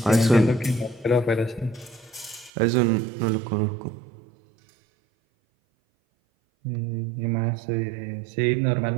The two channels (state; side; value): drops out; left; at 2.5 s